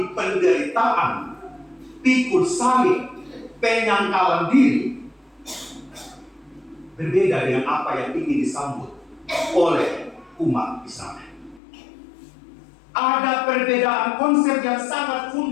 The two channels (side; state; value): right; drops out; at 11.6 s